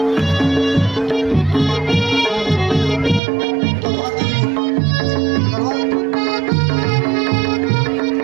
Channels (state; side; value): drops out; left; at 3.2 s